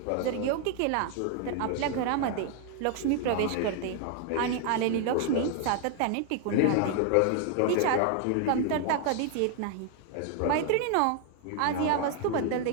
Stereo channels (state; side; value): different; both; correlation 0.00